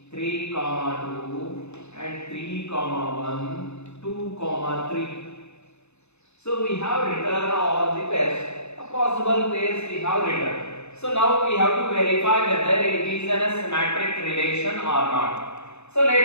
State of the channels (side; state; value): right; late; 0.81 ms